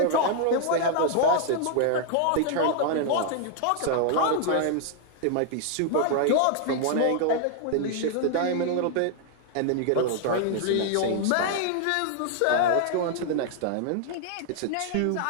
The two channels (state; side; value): different; both; correlation 0.00